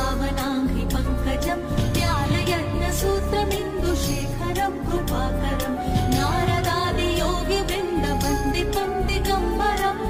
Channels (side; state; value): both; identical; correlation 1.00